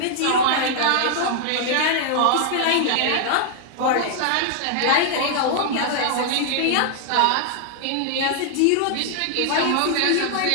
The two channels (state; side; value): different; both; correlation -0.01